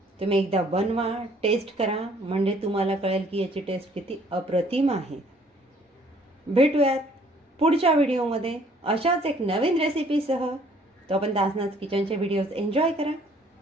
तुम्ही एकदा बनवा, टेस्ट करा, म्हणजे तुम्हाला कळेल की याची टेस्ट किती अप्रतिम आहे. भेटूयात पुढच्या व्हिडिओमध्ये अशाच एक नवीन रेसिपीसह. तोपर्यंत आसनाज किचनचे व्हिडिओज एन्जॉय करा.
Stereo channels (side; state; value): both; normal; correlation 0.60